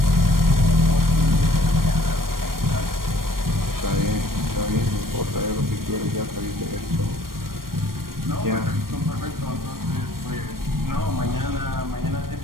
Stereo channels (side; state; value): left; late; 0.92 ms